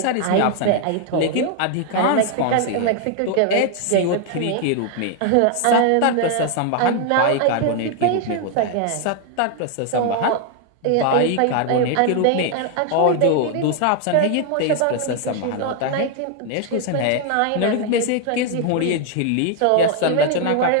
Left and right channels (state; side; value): different; both; correlation 0.00